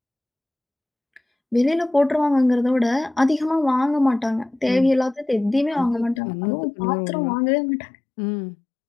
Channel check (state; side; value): drops out; right; at 6.2 s